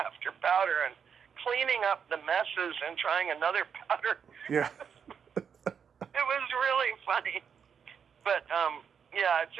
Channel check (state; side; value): quieter; left; 7.1 dB